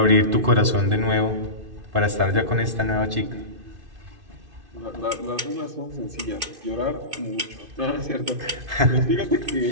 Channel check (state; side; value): late; left; 2.5 ms